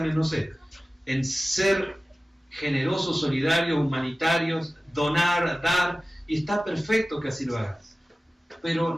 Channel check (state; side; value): normal; both; correlation 0.96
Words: en, no sé, en ser generosos, solidarios, humanitarios, donar, dar, y está perfecto que así lo hagas, pero